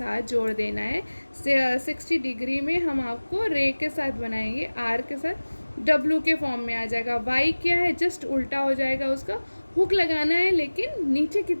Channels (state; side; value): inverted; both; correlation -1.00